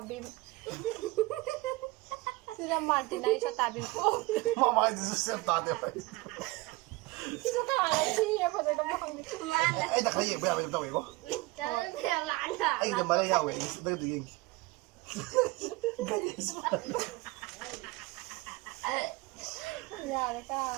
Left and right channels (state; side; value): quieter; left; 22.1 dB